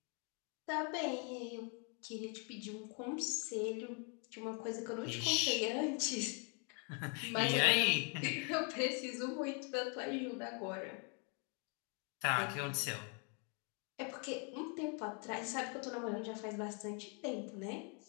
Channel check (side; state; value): right; quieter; 37.1 dB